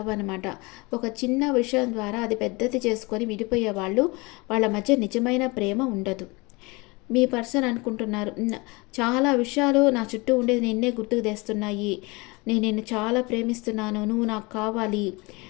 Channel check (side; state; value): right; quieter; 25.7 dB